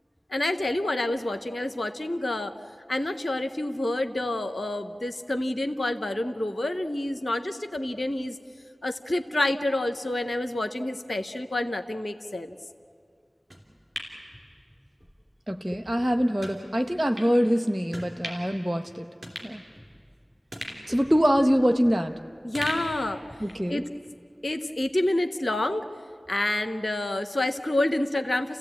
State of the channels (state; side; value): normal; both; correlation 0.97